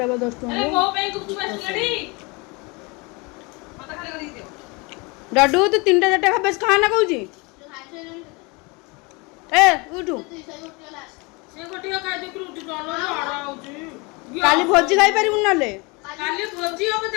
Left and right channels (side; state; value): right; quieter; 27.9 dB